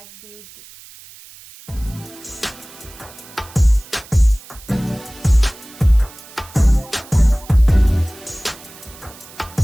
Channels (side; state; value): right; noise; hiss, 20 dB below the sound